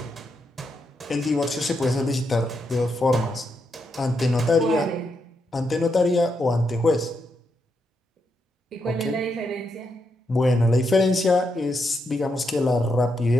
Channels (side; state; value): both; normal; correlation 0.82